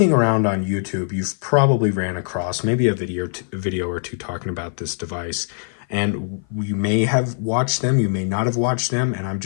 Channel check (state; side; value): silent; right; 56 dB below the other